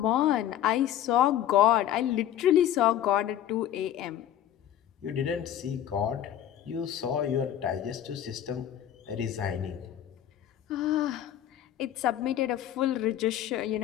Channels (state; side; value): quieter; right; 11.3 dB